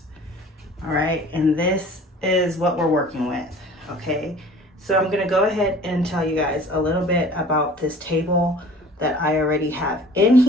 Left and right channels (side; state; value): both; normal; correlation 0.47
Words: All right, and this is what we're working with, okay? So I'm gonna go ahead and tell you guys a little bit about this table that I already have in